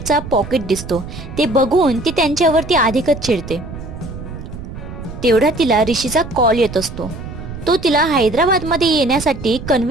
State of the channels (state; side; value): noise; right; rumble, 11 dB below the sound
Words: पॉकेट दिसतो. ते बघून ती त्यांच्यावरती अधिकच चिडते. तेवढा तिला ऋषीचा कॉल येत असतो. तो तिला हैदराबादमध्ये येण्यासाठी